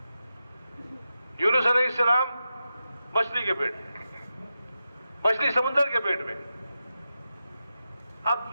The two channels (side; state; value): both; inverted; correlation -0.90